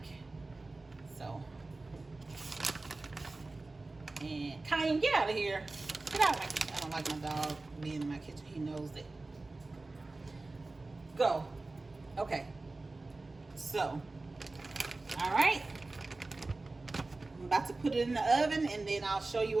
So, and Cayenne, get out of here. Get out of my don't like my dog being in my kitchen. He knows it. Go. Okay. So, all right. I'm about to put it in the oven, and then I'll show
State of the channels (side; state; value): left; quieter; 3.3 dB